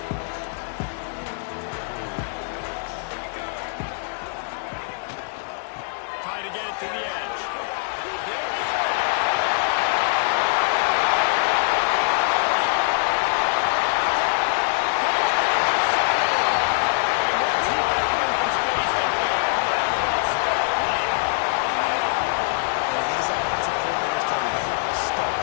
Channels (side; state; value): right; silent; digital silence